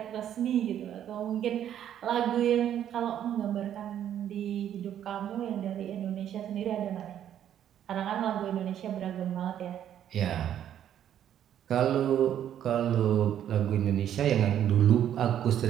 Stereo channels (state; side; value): quieter; left; 10.4 dB